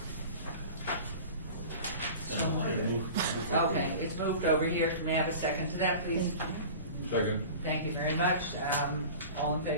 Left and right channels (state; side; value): inverted; both; correlation -0.38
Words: Okay, it's moved over here. Can we have a second to that, please? Second. Thank you very much. All in